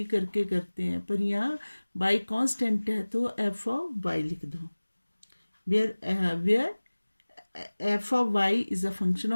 करके करते हैं, पर यहाँ y कांस्टेंट है तो f of y लिख दो, where f of y is a function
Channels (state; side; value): inverted; both; correlation -1.00